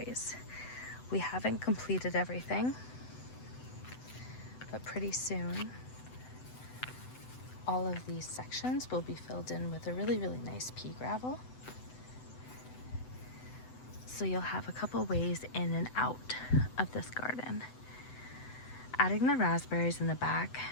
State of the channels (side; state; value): right; late; 7.9 ms